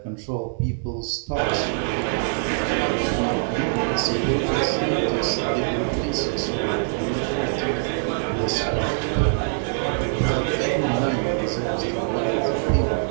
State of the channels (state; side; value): silent; left; digital silence